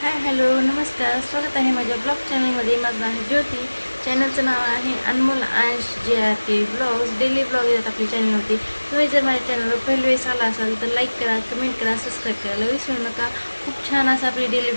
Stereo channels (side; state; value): both; inverted; correlation -1.00